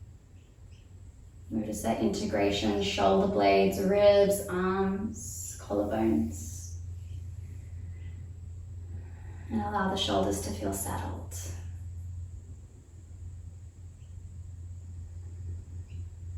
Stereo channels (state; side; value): identical; both; correlation 1.00